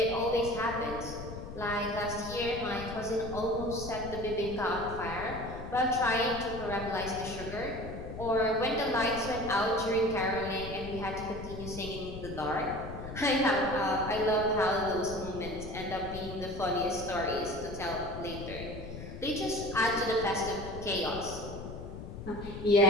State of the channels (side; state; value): left; noise; rumble, 10 dB below the sound